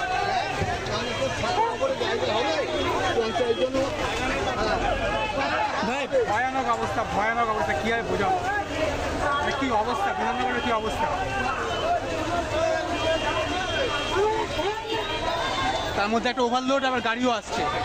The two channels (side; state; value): both; identical; correlation 1.00